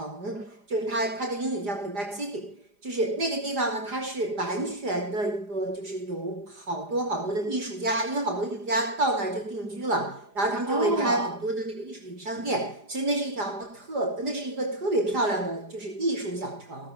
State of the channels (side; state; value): left; late; 4.9 ms